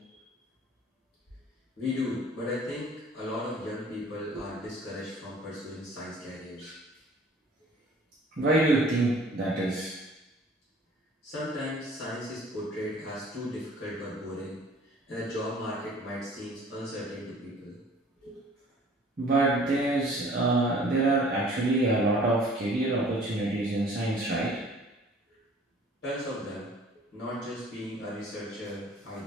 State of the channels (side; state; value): both; normal; correlation 0.51